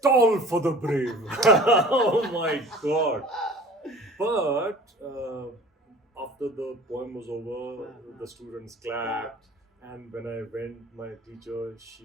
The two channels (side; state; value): both; normal; correlation 0.45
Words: Toll for the brave. Oh my God. But after the poem was over, the students clapped. And when I went, my teacher,